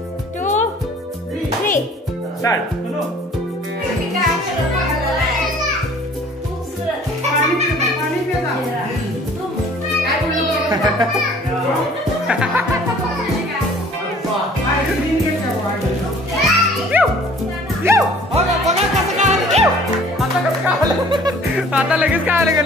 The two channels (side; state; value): both; normal; correlation 0.52